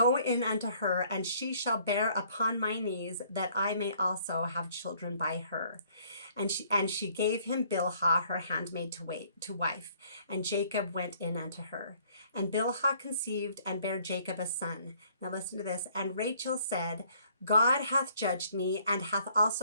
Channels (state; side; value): inverted; both; correlation -0.62